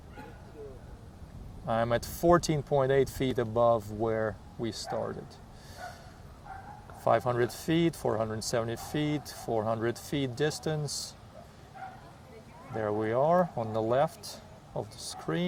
I'm at 14.8 feet above where we started. 500 feet, 470 feet, 400 feet distance. There we are on the left of the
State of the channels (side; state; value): both; identical; correlation 1.00